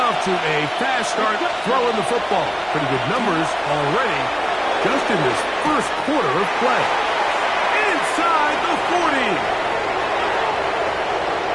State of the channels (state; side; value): identical; both; correlation 1.00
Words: to a fast start throwing the football. Pretty good numbers already just in this first quarter of play. Inside the 40.